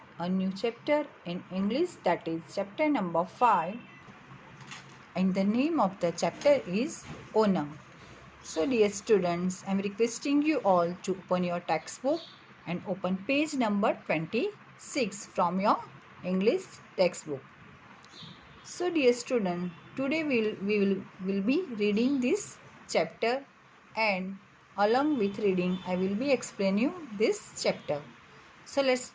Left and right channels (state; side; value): identical; both; correlation 1.00